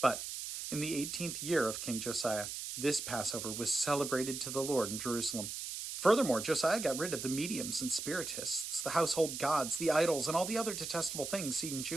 in the 18th year of King Josiah, this Passover was celebrated to the Lord in Jerusalem." Furthermore, Josiah got rid of the mediums and spiritists, the household gods, the idols, and all the other detestable things seen in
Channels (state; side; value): noise; right; hiss, 6 dB below the sound